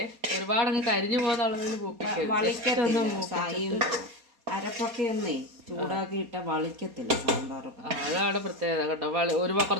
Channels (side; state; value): left; late; 4.2 ms